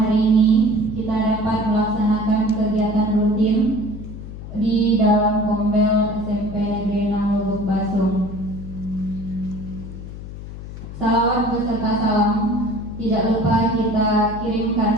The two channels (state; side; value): noise; left; hum, 11 dB below the sound